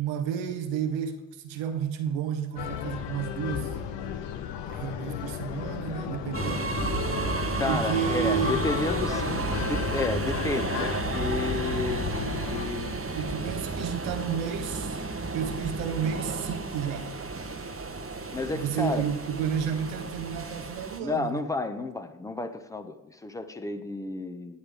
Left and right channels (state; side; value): normal; both; correlation 0.26